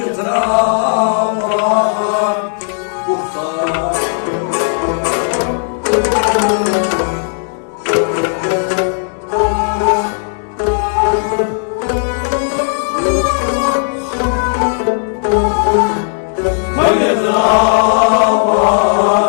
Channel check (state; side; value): silent; right; digital silence